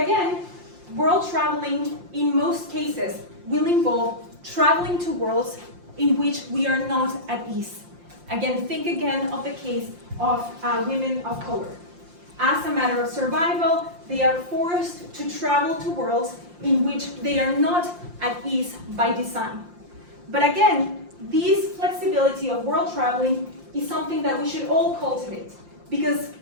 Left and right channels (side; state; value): left; late; 5.7 ms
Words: again, world traveling in most cases will involve traveling to worlds in which we are not at ease. Again, think again of the case of women of color. As a matter of survival, they are forced to travel to worlds in which they are not at ease by design. But again, this flexibility of world traveling is something that we should all cultivate, because